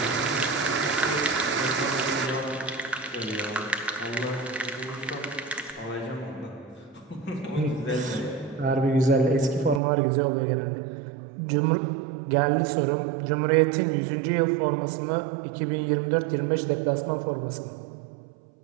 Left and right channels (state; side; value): drops out; left; at 9.8 s